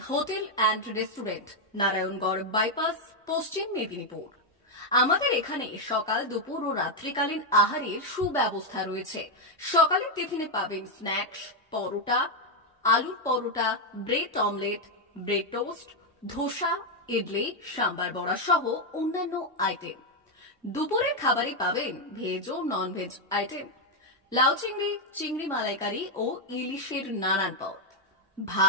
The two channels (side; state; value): both; normal; correlation 0.03